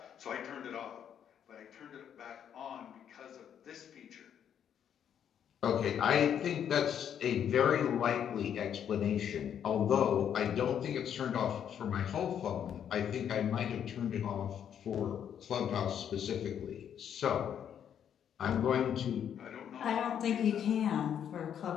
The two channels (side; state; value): right; quieter; 9.0 dB